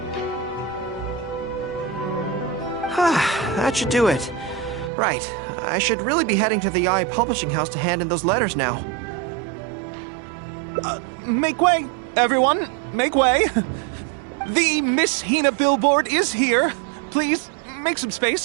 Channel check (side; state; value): left; drops out; at 4.9 s